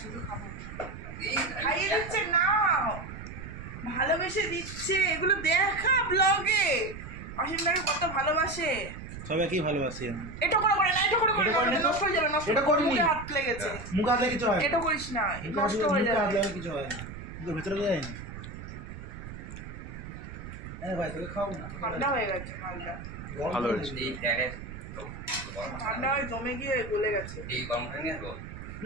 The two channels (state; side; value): noise; right; rumble, 11 dB below the sound